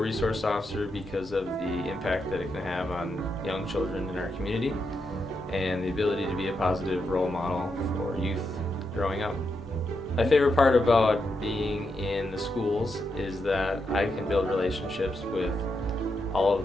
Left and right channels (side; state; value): both; normal; correlation 0.83